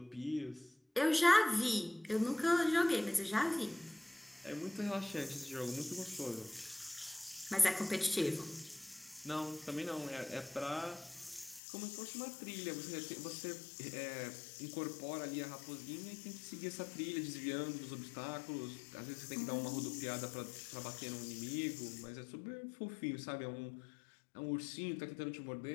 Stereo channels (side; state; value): right; drops out; at 11.6 s